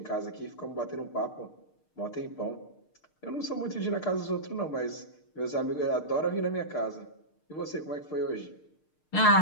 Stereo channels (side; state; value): right; late; 6.6 ms